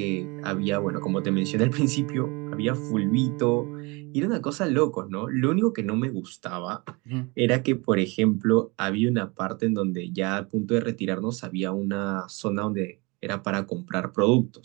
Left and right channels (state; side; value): quieter; left; 27.0 dB